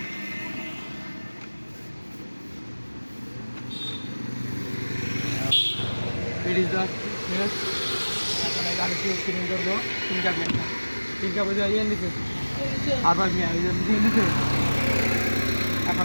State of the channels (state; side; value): inverted; both; correlation -1.00